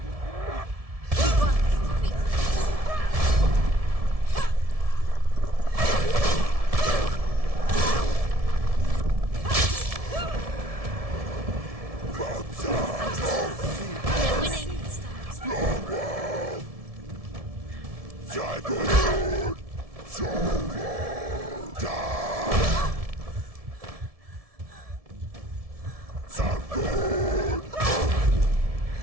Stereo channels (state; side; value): late; left; 1.7 ms